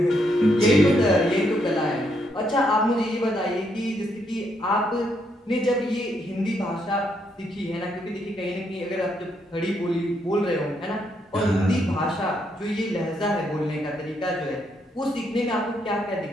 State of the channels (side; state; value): both; normal; correlation 0.76